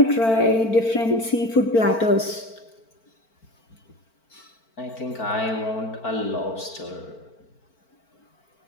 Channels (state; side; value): late; right; 4.5 ms